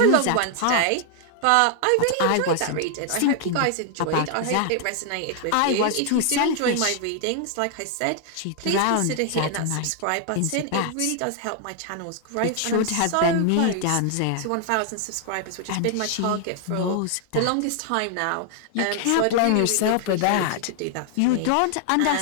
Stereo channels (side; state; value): both; different; correlation 0.00